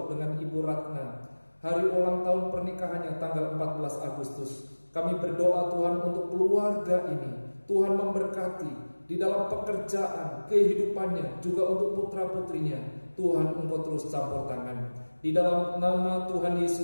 dengan Ibu Ratna. Hari ulang tahun pernikahannya tanggal 14 Agustus. Kami berdoa Tuhan untuk keluarga ini. Tuhan memberkati di dalam pekerjaan, kehidupannya, juga untuk putra-putrinya. Tuhan, Engkau terus campur tangan. Di dalam nama Tuhan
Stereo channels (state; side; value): inverted; both; correlation -1.00